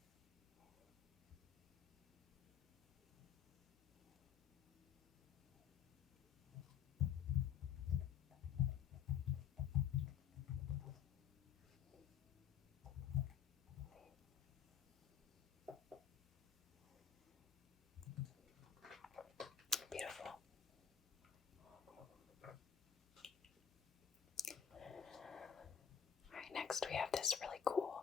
Beautiful. Alright, next we have this really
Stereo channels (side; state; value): right; quieter; 8.1 dB